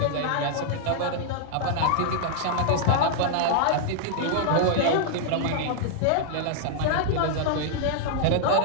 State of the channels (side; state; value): both; different; correlation -0.01